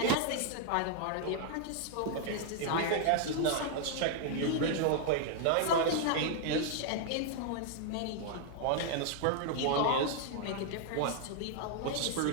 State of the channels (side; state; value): both; different; correlation 0.00